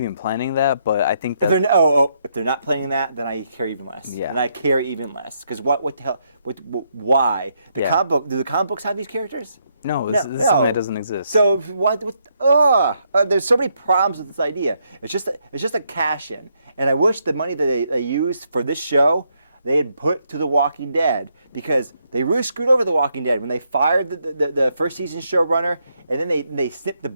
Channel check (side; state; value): both; inverted; correlation -0.76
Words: planning that, but I think that... If they're not planning that, then I care even less. Yeah. And I care even less because what the hell? Why? Do the comic books have these characters? No, this is something that doesn't exist. So there's so many problems with this idea. It's just a cash in, and I wish the money that they used for this show, they had put to The Walking Dead, because they really screwed over The Walking Dead when they fired the first season showrunner, and then they snipped the